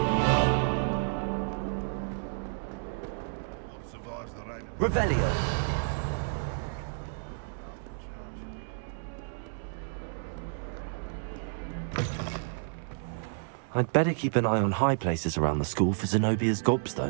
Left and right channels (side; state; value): left; silent; 57 dB below the other